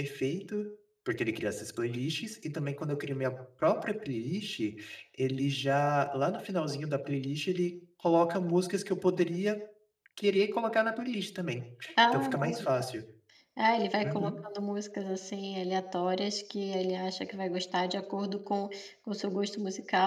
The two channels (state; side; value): identical; both; correlation 1.00